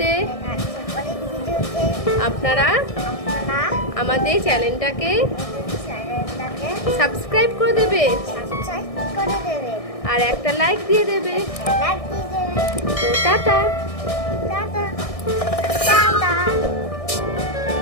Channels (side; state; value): right; late; 1.6 ms